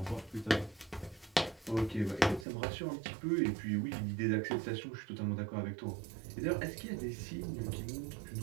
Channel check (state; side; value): drops out; left; at 2.5 s